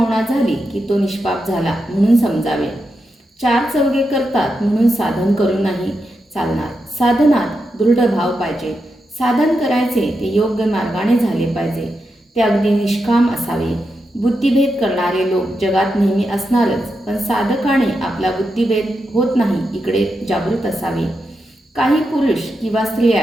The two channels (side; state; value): both; normal; correlation 0.87